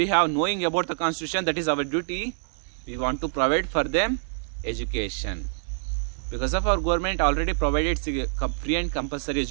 have knowing about the constitution, that is our duty. We want to provide for them education. Because of our government already provided free and compulsory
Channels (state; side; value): silent; left; digital silence